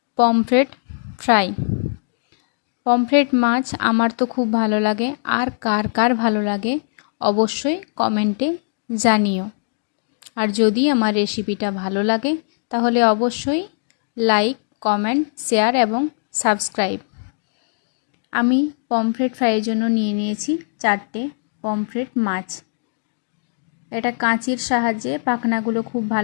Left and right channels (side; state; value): right; silent; digital silence